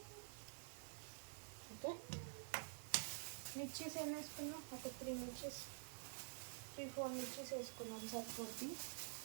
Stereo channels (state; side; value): silent; left; digital silence